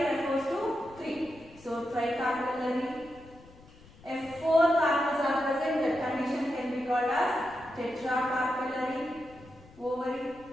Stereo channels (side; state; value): left; noise; rumble, 23 dB below the sound